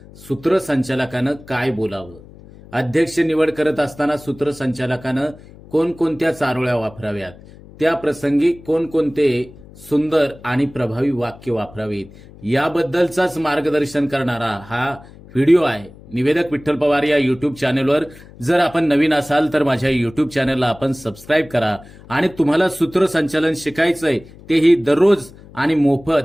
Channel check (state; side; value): noise; left; hum, 21 dB below the sound